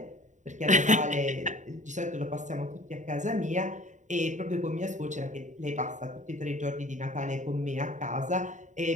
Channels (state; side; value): late; left; 0.35 ms